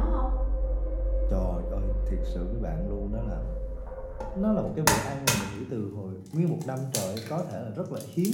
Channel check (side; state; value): both; identical; correlation 1.00